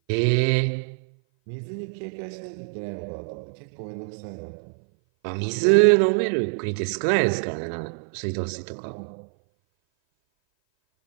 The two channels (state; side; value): silent; left; 57 dB below the other